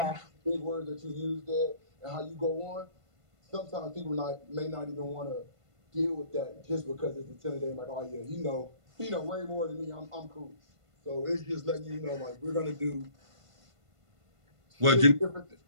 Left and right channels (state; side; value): late; left; 1.5 ms